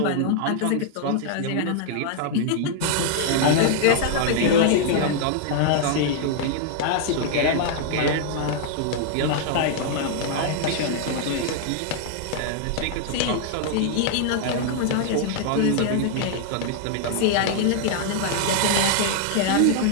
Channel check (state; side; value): different; both; correlation -0.01